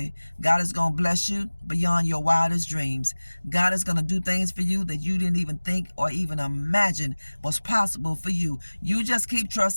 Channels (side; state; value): both; inverted; correlation -1.00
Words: God is going to bless you beyond your wildest dreams. God is going to do things for you that you didn't even think or even imagine was possible for you. You just keep